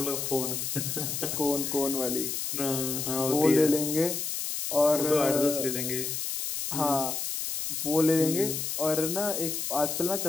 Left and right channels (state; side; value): noise; left; hiss, 3 dB below the sound